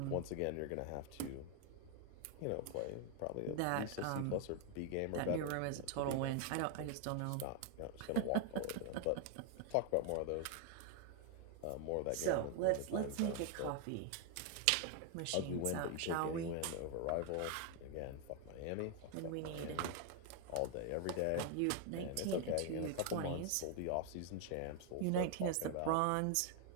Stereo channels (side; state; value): both; different; correlation 0.00